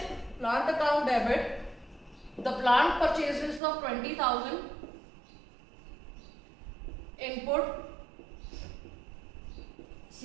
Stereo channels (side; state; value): left; drops out; at 3.6 s